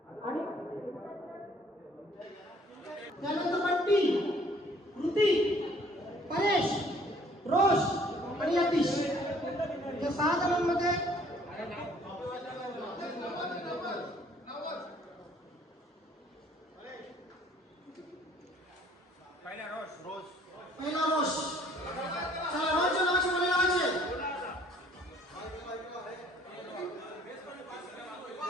आणि त्यानंतर बंटी, कृती, परेश, रोश आणि यतीश या 6 जणांमध्ये पहिला रोश. चला रोशच्या नावाची मुले लावायचे.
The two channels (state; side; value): normal; both; correlation 0.59